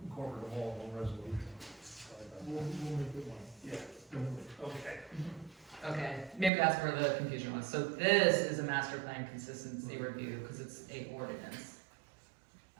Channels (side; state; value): left; drops out; at 6.5 s